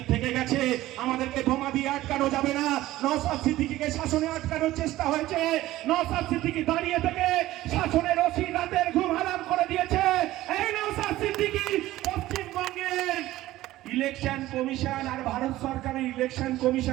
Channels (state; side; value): quieter; left; 15.9 dB